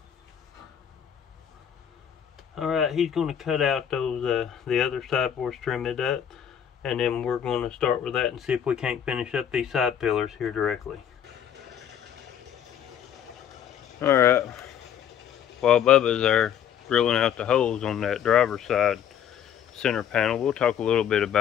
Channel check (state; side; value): quieter; right; 9.1 dB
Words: Alright, he's going to cut out those the other side for us, trim it up, and then we're going to start with that and see if we can't finish up these side pillars here directly. Alright, while Bubba's there drilling out the holes on that driver's side center panel, we'll talk a little bit